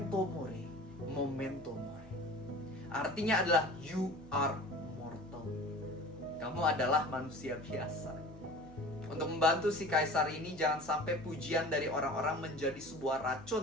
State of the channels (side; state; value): left; noise; hum, 22 dB below the sound